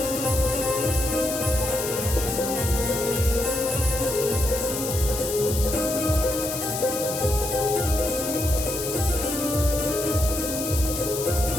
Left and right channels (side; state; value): left; noise; hiss, 6 dB below the sound